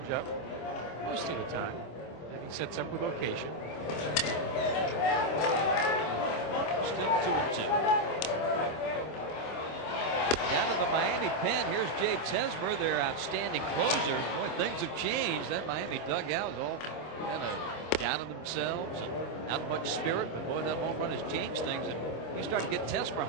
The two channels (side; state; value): right; late; 26 ms